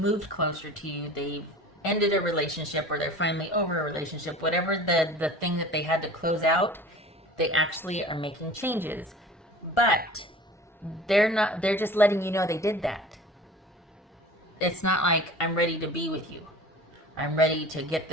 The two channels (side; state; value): both; normal; correlation 0.41